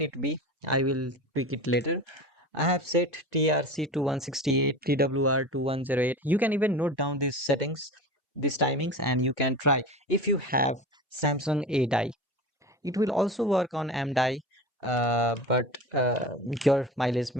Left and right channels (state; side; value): normal; both; correlation 0.32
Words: it be. I will tweak it later. I have set TRC to 168, TWR to 108. You can even note down these settings, these timings, and you can try. If you have Samsung A die, it will also work on M die, but your mileage